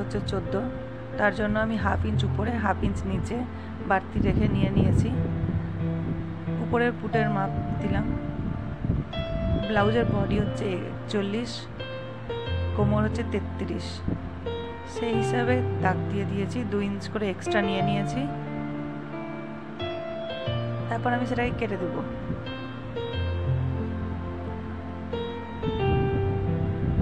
হচ্ছে 14, তার জন্য আমি হাফ ইঞ্চ উপরে হাফ ইঞ্চ নিচে বাড়তি রেখে নিয়েছি। উপরের পুটের মাপ দিলাম। ব্লাউজের বডি হচ্ছে 41, কোমর হচ্ছে 33, সেই হিসাবে দাগ দিয়ে দিয়েছি। 2 ইঞ্চ করে এক্সট্রা নিয়েছি। তারপর আমি সেটাকে কেটে দেব।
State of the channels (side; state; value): both; identical; correlation 1.00